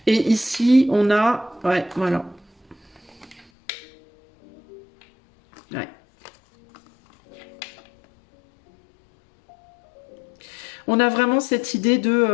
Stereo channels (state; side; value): drops out; right; at 3.5 s